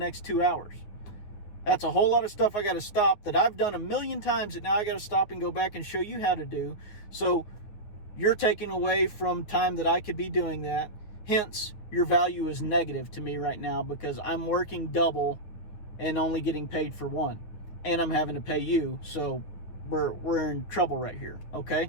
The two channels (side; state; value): right; late; 9.8 ms